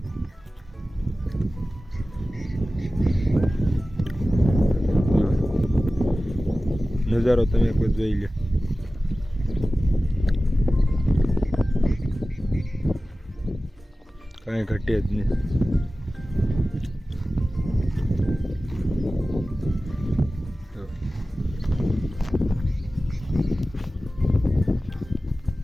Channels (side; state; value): both; normal; correlation 0.96